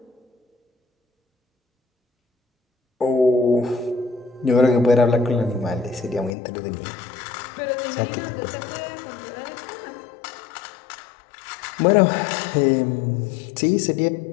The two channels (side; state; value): right; drops out; at 6.3 s